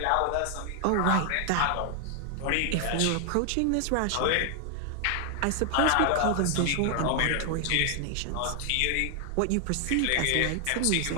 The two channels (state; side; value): different; both; correlation 0.00